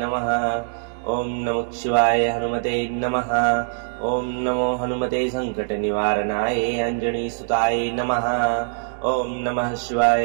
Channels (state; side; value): silent; left; digital silence